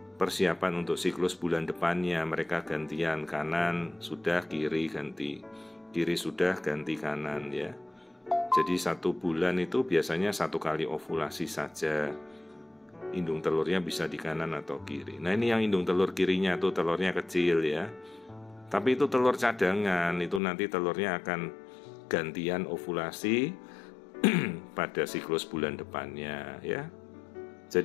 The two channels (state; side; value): drops out; right; at 20.4 s